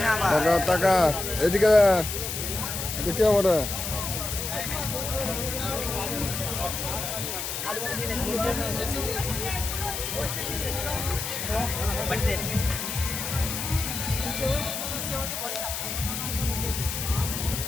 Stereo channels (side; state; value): left; noise; hiss, 4 dB below the sound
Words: টাকা টাকা এদিকে কে বলে